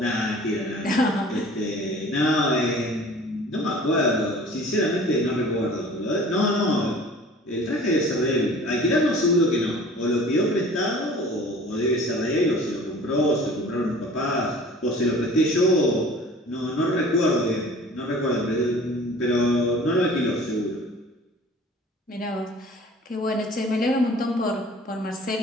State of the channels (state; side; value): normal; both; correlation 0.46